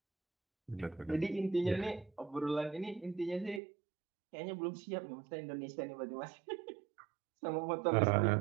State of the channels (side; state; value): left; drops out; at 3.6 s